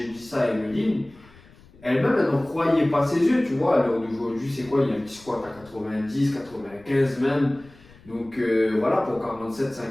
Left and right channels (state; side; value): noise; left; rumble, 25 dB below the sound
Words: dit ça à Emeline, elle-même, elle n'en croyait pas ses yeux, tu vois. À l'heure d'aujourd'hui, c'est quoi? Il y a un petit squat à 90, 95 même. Donc voilà, pour